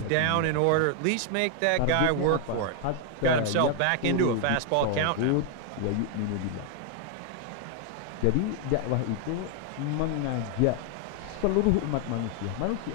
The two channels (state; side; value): different; both; correlation 0.00